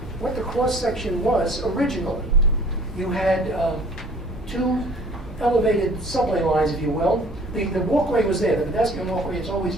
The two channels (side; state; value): both; normal; correlation 0.52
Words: what the cross-section was originally. You had 2 elevated subway lines, if you will. The walkway was there, the pedestrian walkway has always